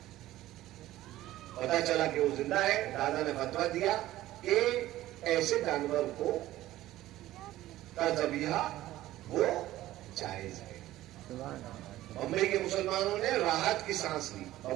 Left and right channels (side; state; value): left; quieter; 15.2 dB